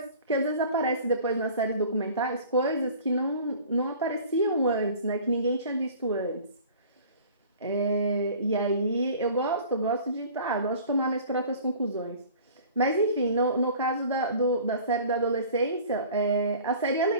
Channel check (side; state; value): both; inverted; correlation -0.46